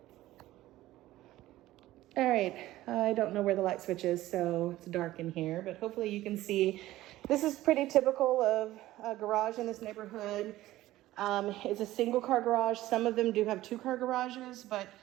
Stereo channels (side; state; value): left; quieter; 15.8 dB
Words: All right, I don't know where the light switch is, so it's dark in here, but hopefully you can see. This is pretty typical of a garage in this neighborhood. It's a single car garage. Some of them do have 2-car garages, but